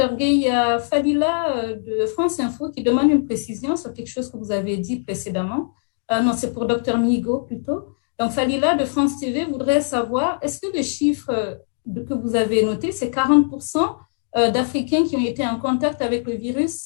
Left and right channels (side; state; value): right; silent; digital silence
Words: Gay. Il y a Fadila de France Info qui demande une précision sur quelque chose que vous avez dit précédemment. Non, c'est pour Dr Migo plutôt. Donc, Fadila de France TV voudrait savoir, est-ce que le chiffre que vous avez noté, c'est 40% d'Africains qui ont été en contact avec le